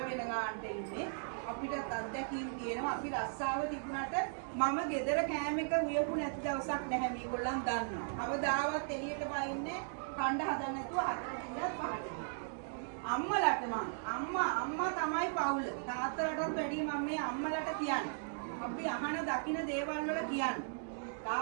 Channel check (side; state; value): left; silent; digital silence